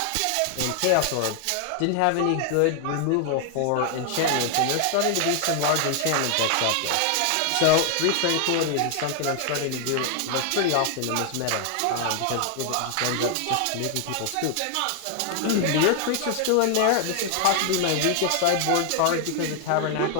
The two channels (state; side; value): different; both; correlation 0.00